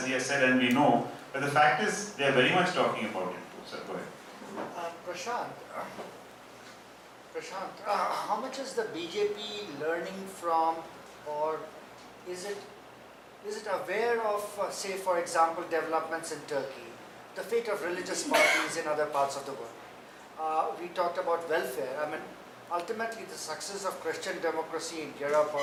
he has said, and we know, but the fact is they are very much talking about it too. Sir, go ahead. Prashant, how much is the BJP learning from, or is it aware of, say for example, developments in Turkey, the fate of religious parties in other parts of the world? We talked about welfare. I mean, ultimately the success of Christian democracy in Europe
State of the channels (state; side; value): identical; both; correlation 1.00